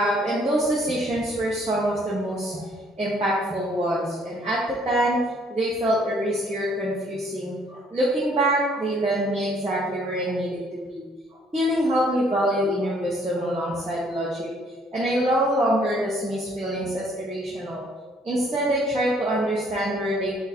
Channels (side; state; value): both; normal; correlation 0.63